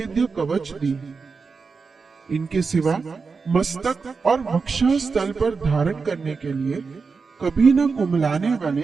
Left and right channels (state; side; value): quieter; left; 4.8 dB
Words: कवच दी। इनके सिवा मस्तक और वक्षस्थल पर धारण करने के लिए कभी न कुमलाने वाले